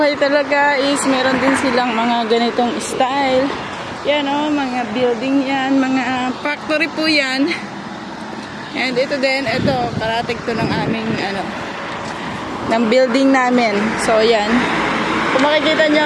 talaga is meron din silang mga ganitong style. Yan o, mga building yan, mga factory po yan. And ito din, ito, karating to ng aming, ng building namin. So, yan. Kung makikita nyo,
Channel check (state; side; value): identical; both; correlation 1.00